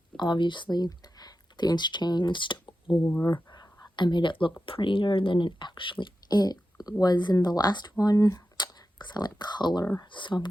obviously things changed, or I made it look prettier than it was in the last one, because I like color. So I'm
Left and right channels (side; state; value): both; normal; correlation 0.92